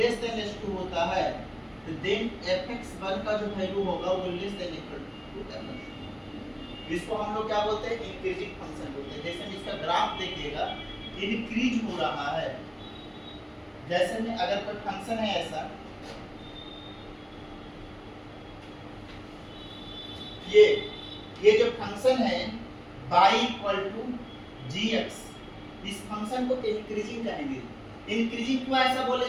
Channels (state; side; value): identical; both; correlation 1.00